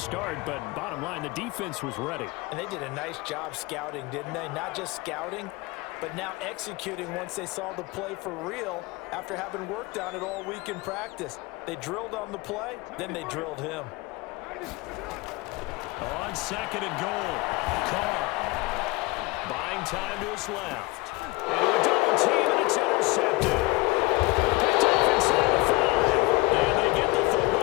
but bottom line, the defense was ready. And they did a nice job scouting, didn't they? Not just scouting, but now executing once they saw the play for real after having worked on it all week in practice. They drilled on the play, then they drilled him. On second and goal, Carr. Buying time to his left. And a double team, and it's intercepted. Picked off inside the 5. And they get the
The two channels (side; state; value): right; quieter; 22.8 dB